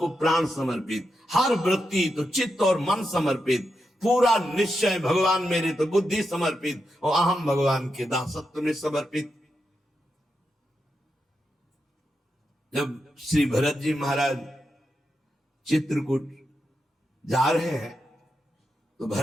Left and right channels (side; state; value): both; normal; correlation 0.86